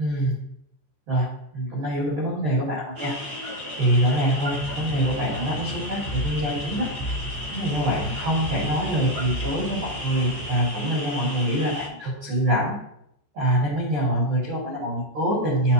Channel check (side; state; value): left; late; 14 ms